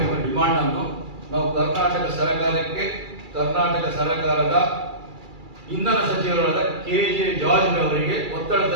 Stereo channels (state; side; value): late; left; 2.3 ms